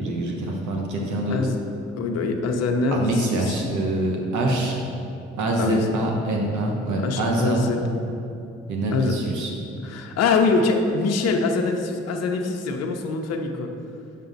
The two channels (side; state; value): both; normal; correlation 0.42